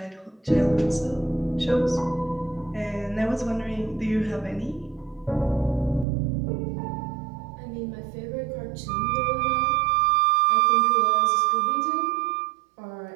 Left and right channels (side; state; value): left; drops out; at 6.1 s